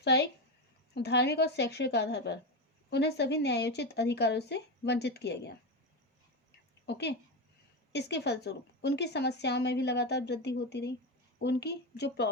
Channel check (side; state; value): both; normal; correlation 0.14